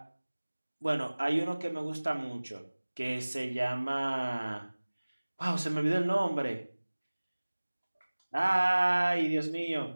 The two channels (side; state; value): both; inverted; correlation -1.00